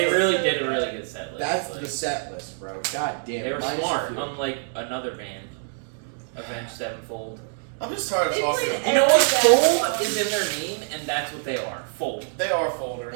it's really so did a good. really good set list. That's like, the set list, bro. God damn. They were minus a smart, few. unlike another band, Avenged Sevenfold. I'm just tired of They talking. played You know what? Every Fold band. is in their name, and that's what they are. Fold. They are folders.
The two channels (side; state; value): left; silent; digital silence